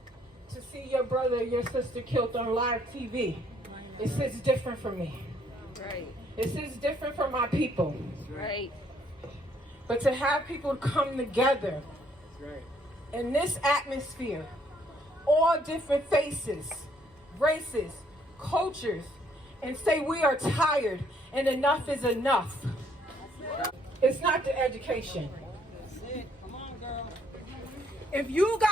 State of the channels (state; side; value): normal; both; correlation 0.66